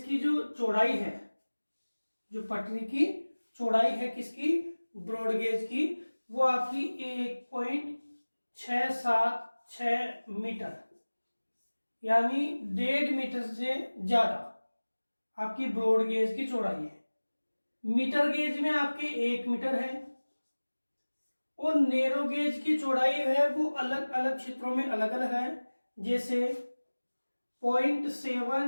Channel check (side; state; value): both; inverted; correlation -1.00